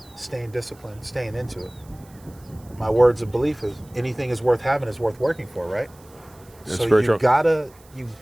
staying disciplined, staying into it. My words of belief is anything is worth having is worth working for, right? That's so very you true.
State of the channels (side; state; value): right; noise; hiss, 27 dB below the sound